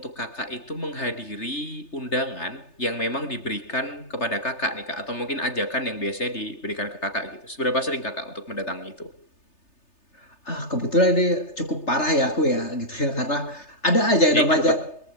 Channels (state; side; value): late; right; 3.3 ms